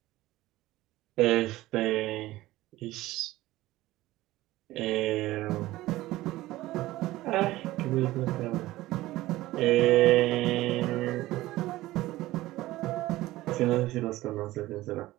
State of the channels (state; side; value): quieter; left; 17.1 dB